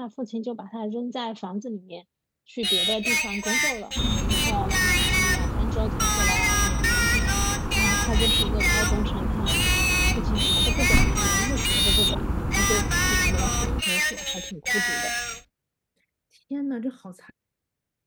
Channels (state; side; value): identical; both; correlation 1.00